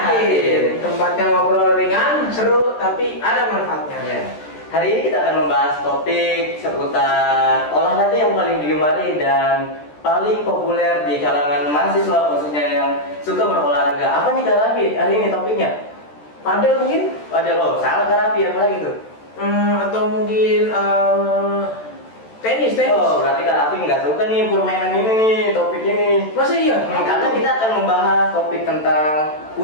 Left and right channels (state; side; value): late; right; 13 ms